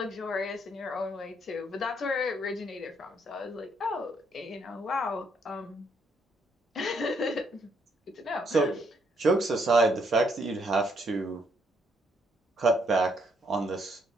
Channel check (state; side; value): normal; both; correlation 0.72